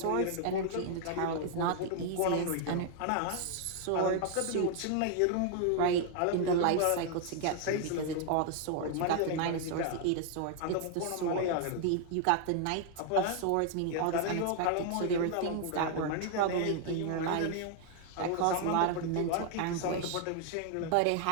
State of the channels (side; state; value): both; different; correlation 0.00